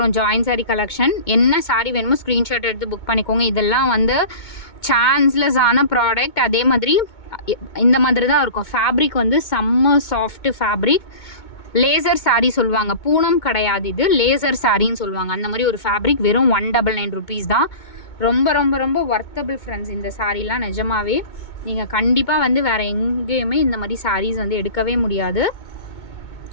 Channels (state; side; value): late; right; 2.2 ms